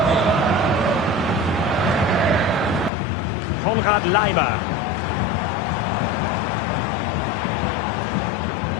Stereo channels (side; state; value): right; drops out; at 2.9 s